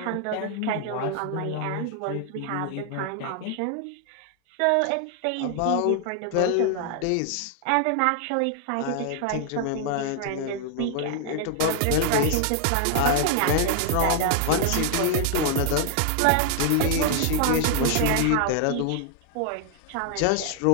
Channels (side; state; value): both; different; correlation 0.00